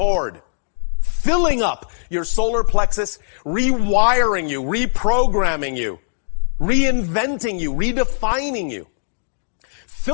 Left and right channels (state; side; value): silent; right; digital silence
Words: filling up your solar plexus, rewiring you, reprogramming you, reinventing you, redefining you,